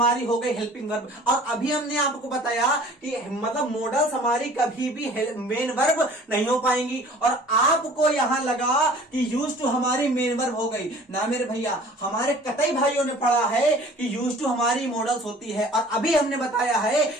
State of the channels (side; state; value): both; normal; correlation 0.49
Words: हो गई हेल्पिंग वर्ब। और अभी हमने आपको बताया कि मतलब मॉडल्स हमारी कभी भी मेन वर्ब नहीं हो पाएंगी, और आपको यहां लगा कि यूज टू हमारी मेन वर्ब हो गई ना मेरे भैया। हमारे कतई भाइयों ने पढ़ा है कि यूज टू हमारी मॉडल्स होती है, और अभी हमने बताया है